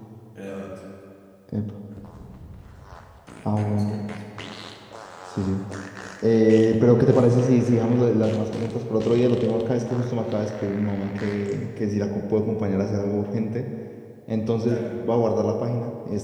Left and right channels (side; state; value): both; identical; correlation 1.00